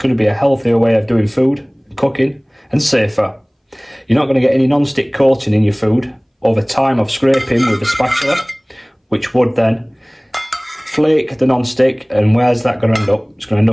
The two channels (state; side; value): identical; both; correlation 1.00